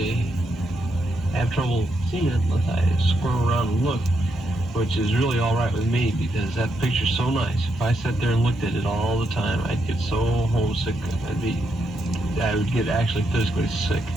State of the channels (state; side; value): normal; both; correlation 0.81